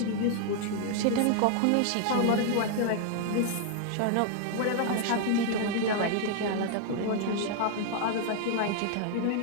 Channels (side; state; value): both; different; correlation 0.00